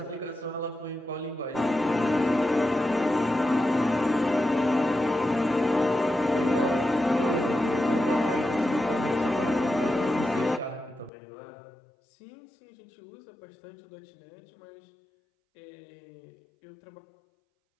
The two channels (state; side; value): drops out; right; at 11.1 s